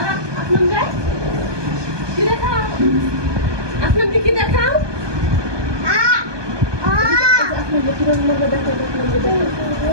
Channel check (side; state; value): left; late; 1.2 ms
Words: কি দেখাও আপনার দিকে দেখাও